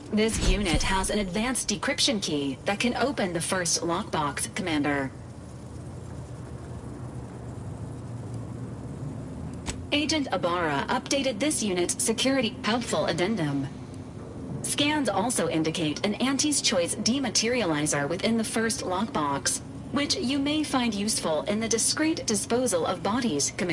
This unit has an advanced decryption key that can open the first lockbox, Commander. Agent Ibarra updated this unit's security helpful addendum. Scans also indicate an Auntie's Choice dematerializer within the first lockbox, which you may find useful in the discreet disposal of bodies,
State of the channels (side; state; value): both; identical; correlation 1.00